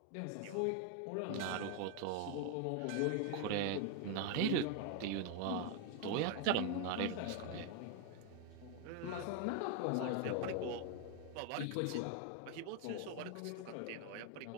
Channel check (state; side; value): different; both; correlation 0.00